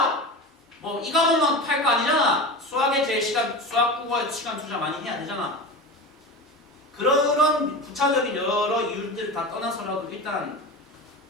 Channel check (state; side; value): normal; both; correlation 0.28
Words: 뭐 이 과목만 팔 거 아니잖아. 수학 국어에 시간 투자 많이 해야 되잖아. 그런 부차적인 여러 이유들을 다 떠나서라도 일단